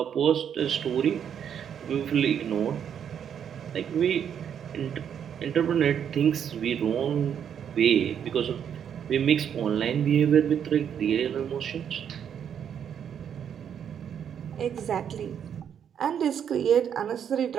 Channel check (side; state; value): left; quieter; 8.5 dB